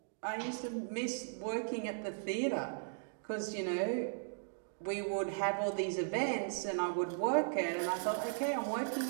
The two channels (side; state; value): left; silent; digital silence